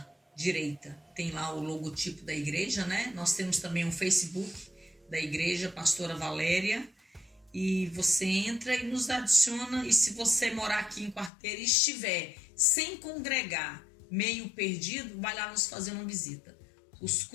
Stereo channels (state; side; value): drops out; right; at 11.3 s